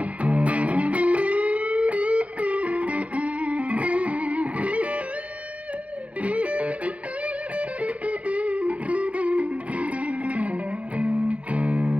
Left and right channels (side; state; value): left; late; 0.065 ms